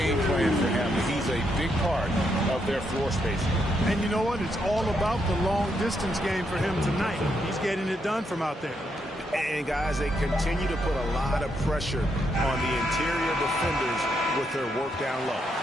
plan for him. He's a big part of their floor spacing. And you know what? It's all about the long-distance game for him tonight. He's getting it done from out there. And, guys, they continue to put a lot of pressure on the interior defenders with their work down low.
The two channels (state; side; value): normal; both; correlation 0.78